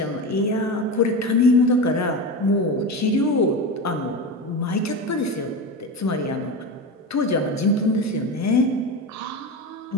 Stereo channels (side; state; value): both; normal; correlation 0.22